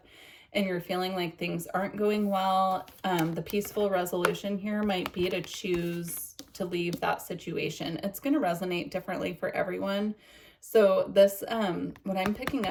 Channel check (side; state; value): both; identical; correlation 1.00